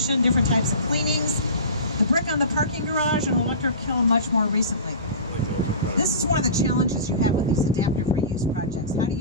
different types of cleanings. The brick on the parking garage and electric kiln much more recently. This is one of the challenges you have with these adaptive reuse projects. How do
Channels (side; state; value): both; inverted; correlation -0.33